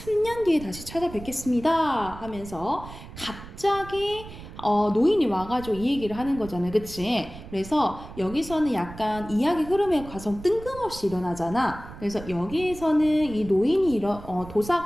뒤에 다시 찾아뵙겠습니다. 하면서 갑자기 노인이 와가지고 이 얘기를 하는 거잖아요. 그치? 그래서 여기서는 약간 이야기 흐름의 과정 뜬금없이 일어나잖아. 그래서 여기에서는 이 노인이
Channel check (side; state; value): right; noise; rumble, 14 dB below the sound